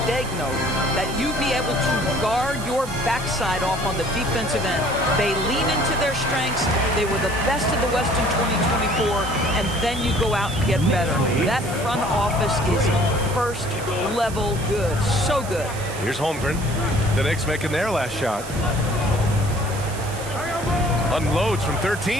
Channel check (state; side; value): noise; right; hiss, 14 dB below the sound